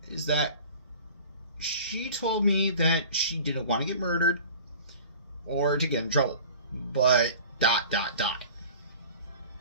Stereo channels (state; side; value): inverted; both; correlation -0.42